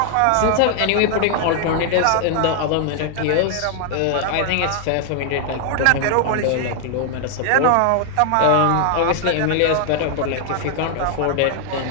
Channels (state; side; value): different; both; correlation 0.00